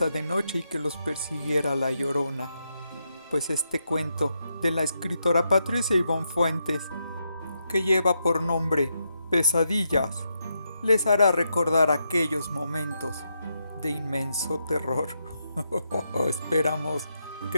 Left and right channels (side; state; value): both; inverted; correlation -0.82